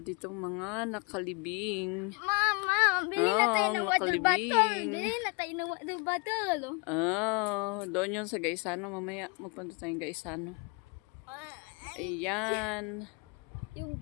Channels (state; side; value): quieter; right; 31.0 dB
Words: ditong mga nakalibing. Mama, bili na tayo ng water nakalibing. bottle. Bili na tayo ng water bottle. Doon yun sa Gaisano. Mamaya magpunta tayong Gaisano. Ayan. Yung